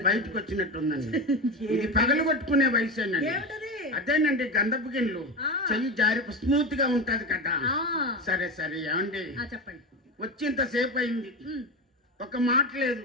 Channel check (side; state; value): both; normal; correlation 0.21